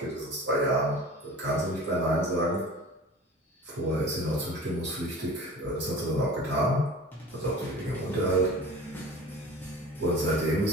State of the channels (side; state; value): both; normal; correlation 0.40